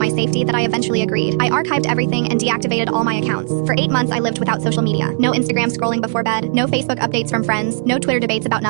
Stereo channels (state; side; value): silent; left; digital silence